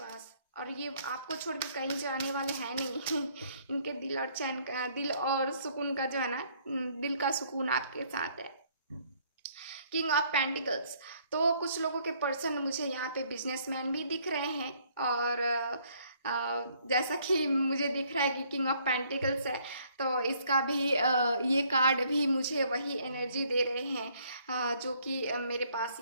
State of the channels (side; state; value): both; inverted; correlation -0.64